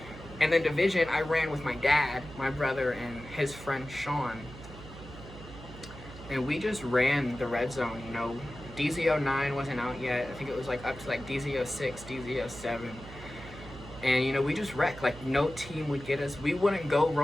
And then Division, I ran with my dad, my brother, and his friend Sean. And we just ran the red zone, you know. DZ09 wasn't out yet. I think it was like up to like DZ06, DZ07. And you know, we just wrecked. Like no team would get us. We wouldn't go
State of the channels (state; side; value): noise; right; hum, 15 dB below the sound